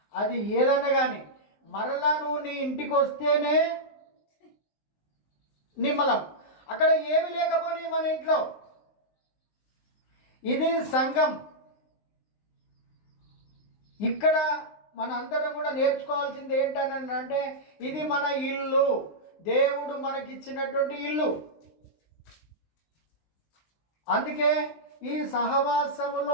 అది ఏదన్నా కానీ మరలా నువ్వు నీ ఇంటికి వస్తేనే నిమ్మలం. అక్కడ ఏమి లేకపోని మన ఇంట్లో. ఇది సంఘం. ఇక్కడ మన అందరం కూడా నేర్చుకోవాల్సింది ఏంటని అంటే ఇది మన ఇల్లు, దేవుడు మనకిచ్చినటువంటి ఇల్లు. అందుకే ఈ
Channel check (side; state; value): right; late; 19 ms